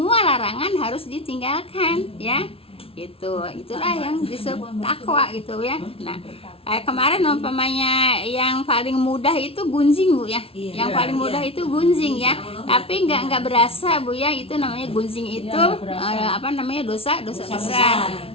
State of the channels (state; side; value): late; right; 0.27 ms